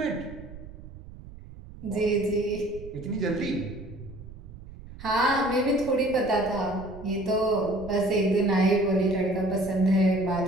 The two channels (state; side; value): noise; right; rumble, 16 dB below the sound